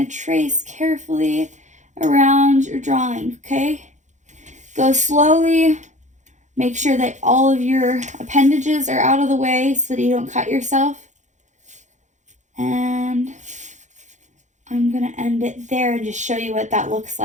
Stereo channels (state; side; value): late; left; 0.35 ms